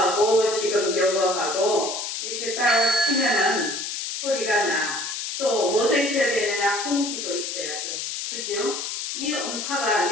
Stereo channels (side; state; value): left; noise; hiss, 4 dB below the sound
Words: 지금 요거하고 이렇게 딱 치면은 소리가 나. 또 뭐도 있어야 되느냐? 공기도 있어야 돼. 그죠? 이 음파가